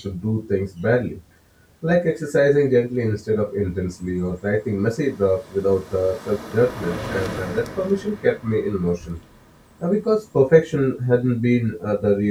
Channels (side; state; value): both; identical; correlation 1.00